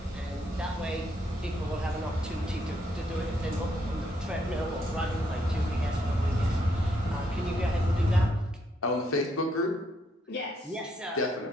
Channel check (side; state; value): both; normal; correlation 0.74